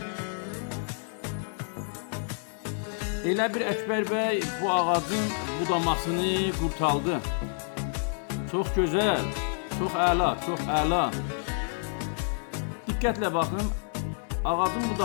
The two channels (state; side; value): silent; right; 59 dB below the other